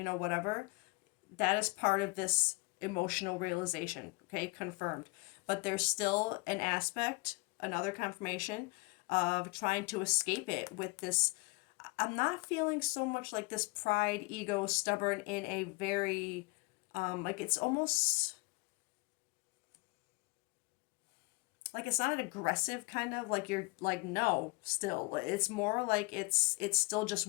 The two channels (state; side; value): quieter; right; 26.3 dB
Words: know, whatever, that is part of this emotional realization, okay, confirmed. But there's still an aspect, another confirmation of trying to escape it with this. I'm not feeling so much like this pride, ego, stubborn in a very, like, it's almost like, it's not an aggressive kind of, like, you're like, no, still it's more like it's still just